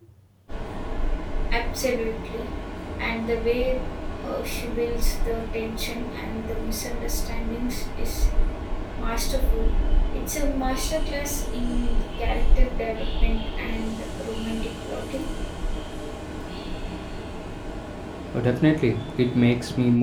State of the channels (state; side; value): identical; both; correlation 1.00